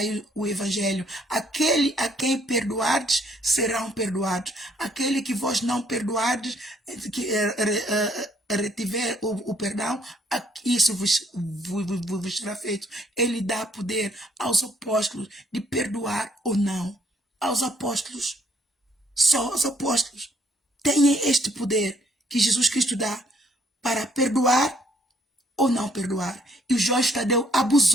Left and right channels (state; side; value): normal; both; correlation 0.66